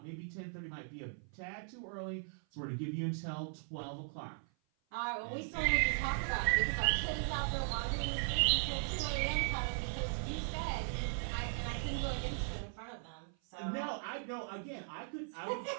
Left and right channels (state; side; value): silent; left; 52 dB below the other